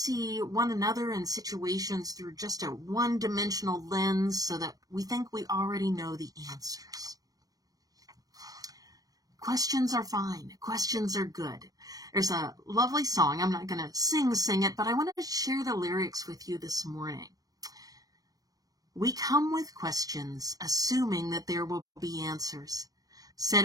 one another and situations through just a one-dimensional lens so that we think we already know the answers. Questions are fine. Questions are good. There's a lovely song. I'm not going to sing it, but I wanted to share the lyrics with you this morning. We come with questions, assuming that there will be answers,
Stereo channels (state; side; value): late; left; 0.18 ms